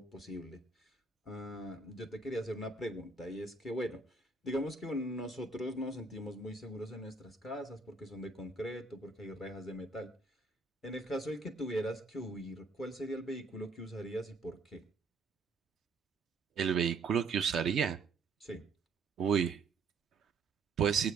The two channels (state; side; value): quieter; left; 4.1 dB